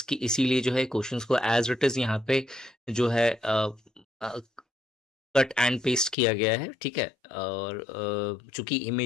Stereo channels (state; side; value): drops out; right; at 6.2 s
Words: इसीलिए जो है क्वेश्चंस को एज इट इज यहाँ पे जो है कट एंड पेस्ट किया गया है। ठीक है। और चूंकि